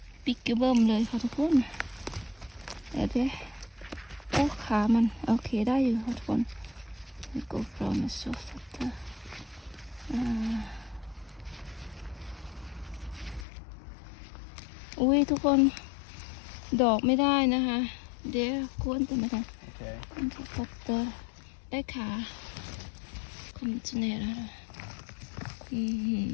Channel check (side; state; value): right; drops out; at 13.5 s